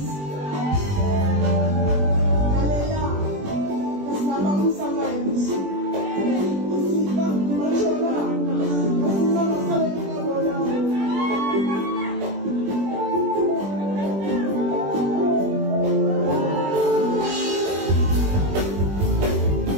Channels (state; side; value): late; left; 21 ms